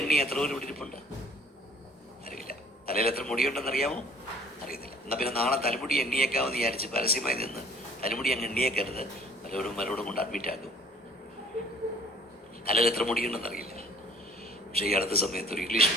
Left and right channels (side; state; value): both; normal; correlation 0.53